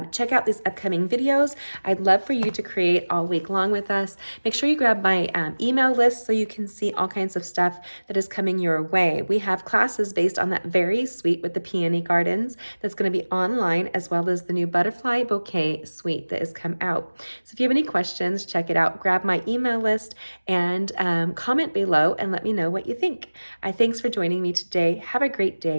check out these upcoming videos. I'd love for you to create all week long with us. Make sure you grab my email list so you can see all kinds of stuff that is coming your way. We have classes based on that very suite with the peony gardens that's going to be online, as well as the new butterfly bouquet suite that has come out. So if you have any questions, check it out. Grab my email list and comment below and let me know what you think. Thanks for joining me today. Have a great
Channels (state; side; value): inverted; both; correlation -1.00